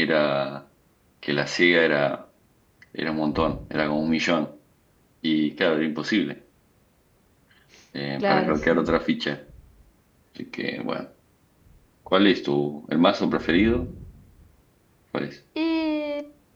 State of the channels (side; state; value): both; identical; correlation 1.00